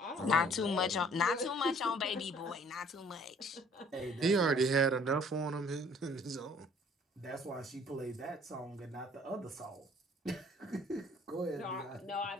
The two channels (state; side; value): normal; both; correlation 0.56